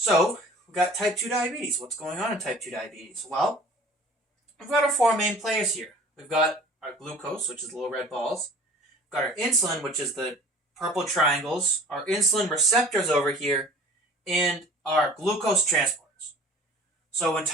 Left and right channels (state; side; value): normal; both; correlation 0.46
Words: we've got type 2 diabetes. What's going on in type 2 diabetes? Well, we've got our four main players here. We've got our glucose, which is the little red balls. We've got our insulin, which is the purple triangles. Our insulin receptors over here, and our glucose transporters. So in